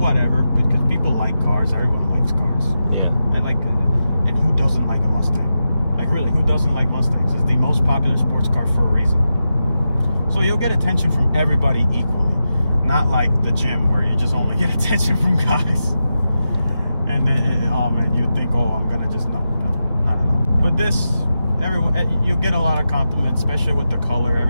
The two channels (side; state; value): both; inverted; correlation -0.90